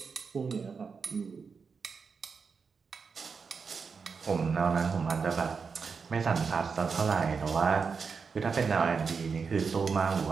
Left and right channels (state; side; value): quieter; left; 5.4 dB